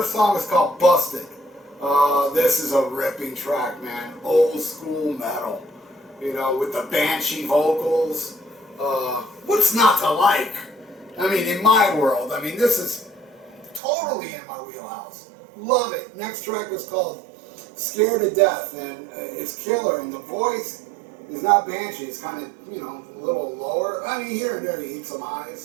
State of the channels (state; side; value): drops out; left; at 13.8 s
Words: song is called Busted. This is a ripping track, man. Old school metal, with the banshee vocals. What's not to like? I mean, in my world, this is totally in my wheelhouse. Love it. Next track is called Scared to Death, and it's killer, and the voice is not banshee. It's kind of, a little lower. Here and there he eats some